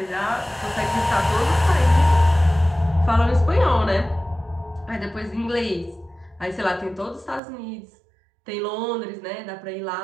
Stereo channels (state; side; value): drops out; left; at 7.4 s